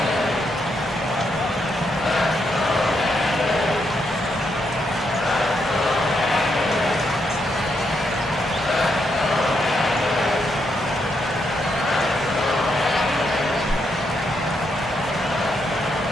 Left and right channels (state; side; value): normal; both; correlation 0.79